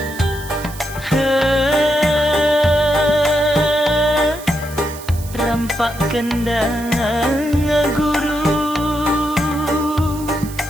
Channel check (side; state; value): right; noise; hiss, 16 dB below the sound